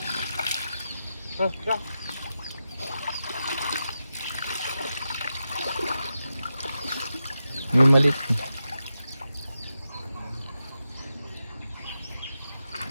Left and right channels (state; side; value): inverted; both; correlation -0.89